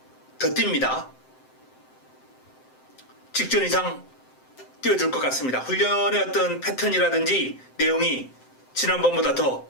더 뜁니다. 직전 이상 뛰어줄 것 같습니다. 훈련의 어떤 패턴이라든지 내용이 지난번보다 더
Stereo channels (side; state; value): right; late; 7.7 ms